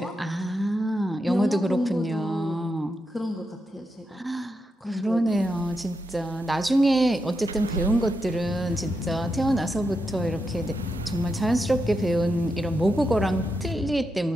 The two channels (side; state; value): both; normal; correlation 0.85